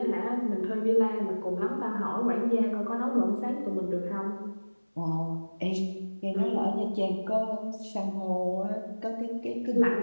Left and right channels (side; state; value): both; inverted; correlation -1.00